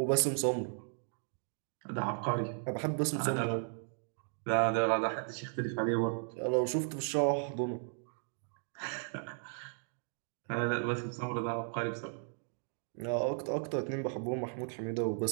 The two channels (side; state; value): left; silent; 54 dB below the other